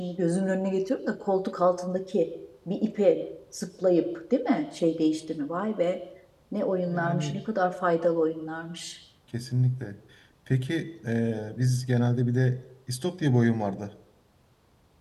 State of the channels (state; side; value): identical; both; correlation 1.00